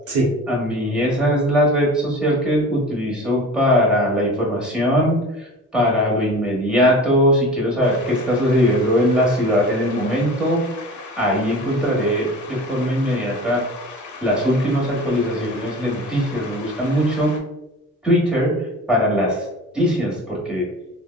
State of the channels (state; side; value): normal; both; correlation 0.37